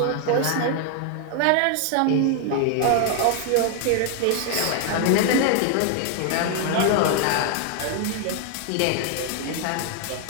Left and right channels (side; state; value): both; different; correlation 0.00